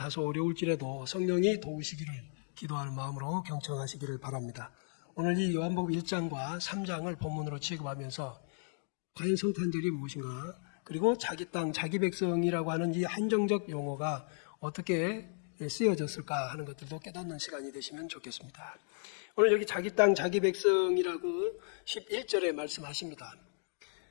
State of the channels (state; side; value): silent; right; 55 dB below the other